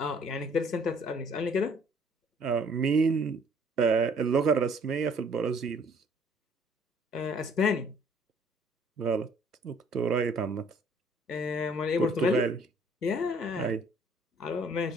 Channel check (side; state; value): both; normal; correlation 0.59